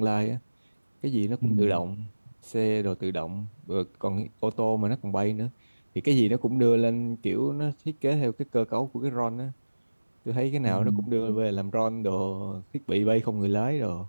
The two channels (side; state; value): both; inverted; correlation -1.00